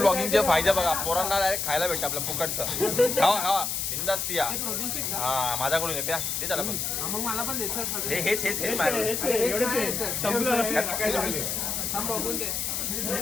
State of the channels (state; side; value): noise; left; hiss, 1 dB below the sound